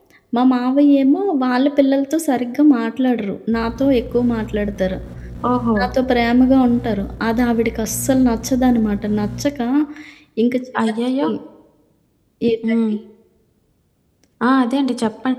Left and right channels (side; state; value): both; identical; correlation 1.00